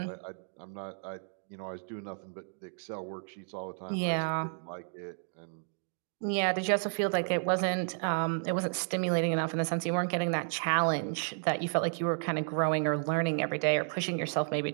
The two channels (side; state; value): left; silent; digital silence